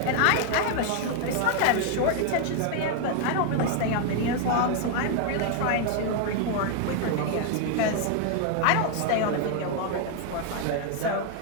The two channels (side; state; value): both; different; correlation 0.00